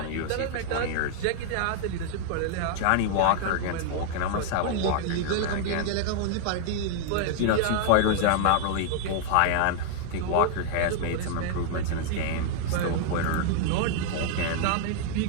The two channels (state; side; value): different; both; correlation -0.01